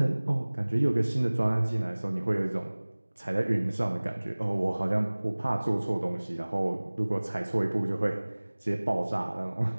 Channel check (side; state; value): both; inverted; correlation -1.00